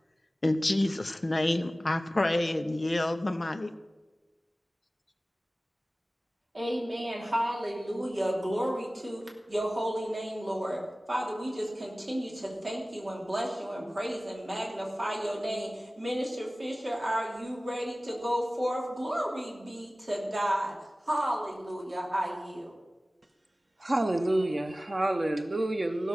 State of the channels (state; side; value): normal; both; correlation 0.97